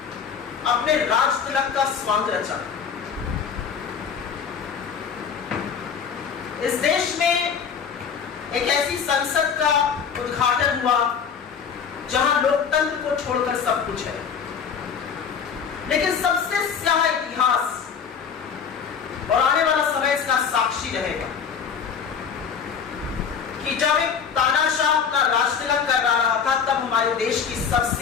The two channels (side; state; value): right; quieter; 6.8 dB